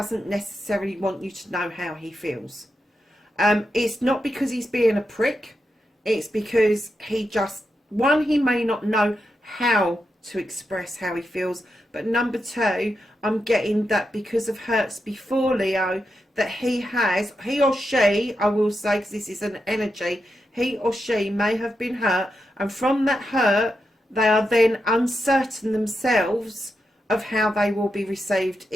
necessarily want you to know how he feels. It's not because he's being a prick. It's because he just, one, he may not know how to express how he feels. But number 2, I'm getting that because of hurts before, Leo, that he or she, I will say, because this is an energy, he or she may have been hurt. And from that hurt, they are then uncertain themselves of how they will be received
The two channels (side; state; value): both; normal; correlation 0.86